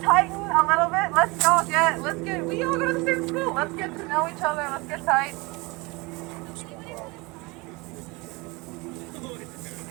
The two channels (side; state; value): left; quieter; 25.7 dB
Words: a little bit? We all go to the same school. Let's get to know each other. Let's get tight.